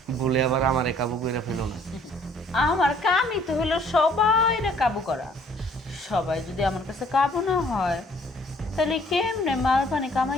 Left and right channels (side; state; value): both; normal; correlation 0.59